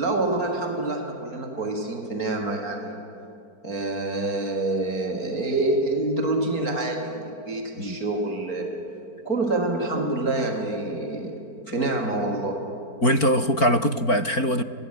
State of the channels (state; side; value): late; right; 4.4 ms